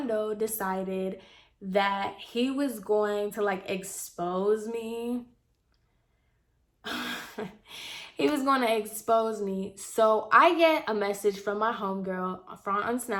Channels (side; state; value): both; identical; correlation 1.00